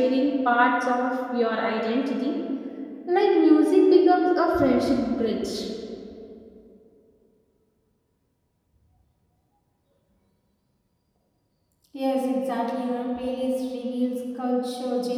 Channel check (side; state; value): both; identical; correlation 1.00